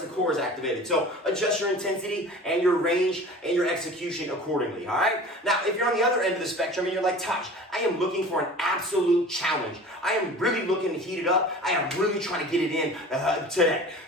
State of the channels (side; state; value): both; normal; correlation 0.40